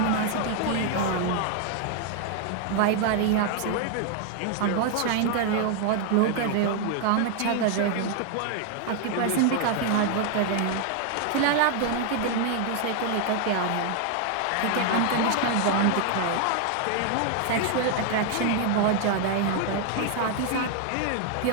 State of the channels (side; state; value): both; different; correlation 0.00